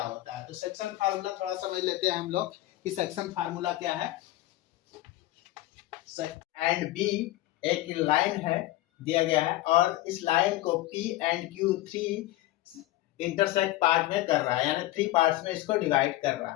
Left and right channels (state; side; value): quieter; right; 16.7 dB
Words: होता है, तो सेक्शन फार्मूला थोड़ा समझ लेते हैं हम लोग कि सेक्शन फार्मूला क्या है। एंड बी एक लाइन है दिया गया है और इस लाइन को P and Q three intersect part में कर रहा है, यानी थ्री पार्ट्स में इसको डिवाइड कर रहा